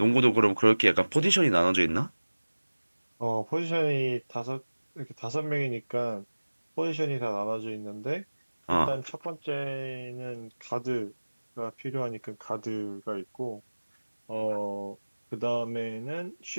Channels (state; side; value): inverted; both; correlation -1.00